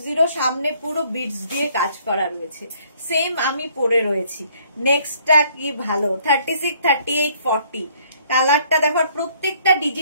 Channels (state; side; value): inverted; both; correlation -0.62